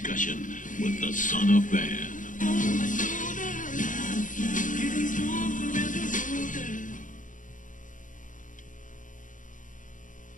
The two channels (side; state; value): right; late; 0.38 ms